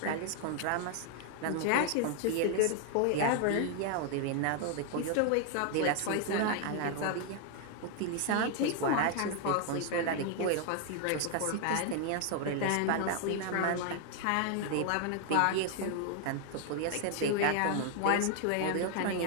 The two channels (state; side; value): different; both; correlation 0.00